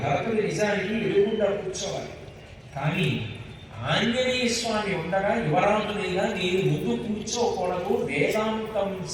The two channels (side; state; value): both; identical; correlation 1.00